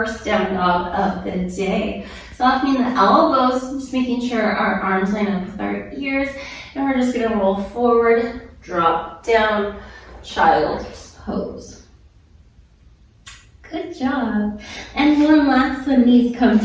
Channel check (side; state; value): both; identical; correlation 1.00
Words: down dog of the day. Softening the elbows, just making sure our arms line up with our ears, and we're just gonna roll forward, drop down, child's pose. Good job. And one last one, knees come